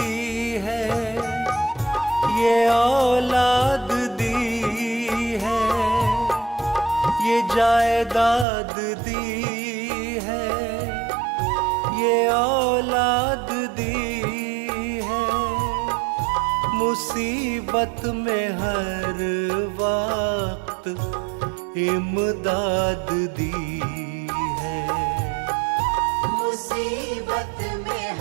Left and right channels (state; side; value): drops out; left; at 8.5 s